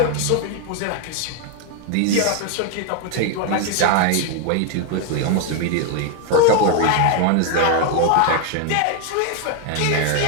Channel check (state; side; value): different; both; correlation 0.01